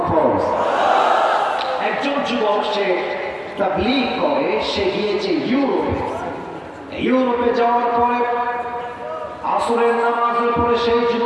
ফরজ? একজন যুবক সে তাবলীগ করে, সে গিয়েছে ইউরোপে যাওয়ার পরে আসরের নামাজের পরে সেই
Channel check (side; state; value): both; identical; correlation 1.00